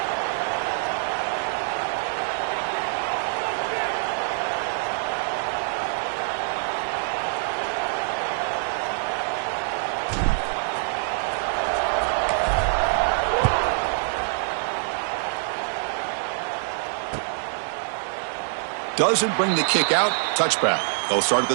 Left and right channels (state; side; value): silent; left; digital silence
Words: Doesn't bring the kick out. Touchback. They'll start at the